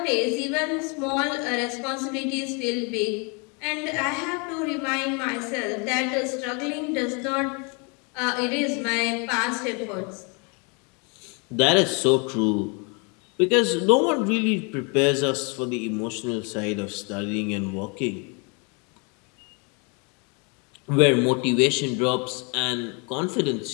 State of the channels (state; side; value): quieter; right; 33.4 dB